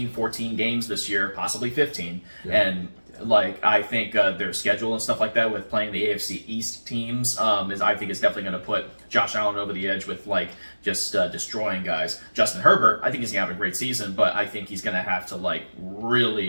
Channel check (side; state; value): both; inverted; correlation -1.00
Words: 14 games this year, possibly 15, and like I think their schedule and stuff like that with playing the AFC East teams I think is definitely going to put Josh Allen over the edge with like just destroying guys. Justin Herbert, I think he's going to have a great season, but I think he's going to have to like